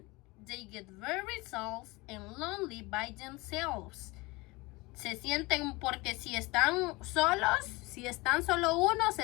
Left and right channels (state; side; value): quieter; right; 23.6 dB